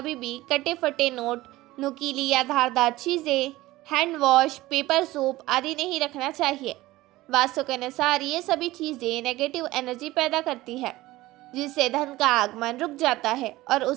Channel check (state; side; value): quieter; left; 17.9 dB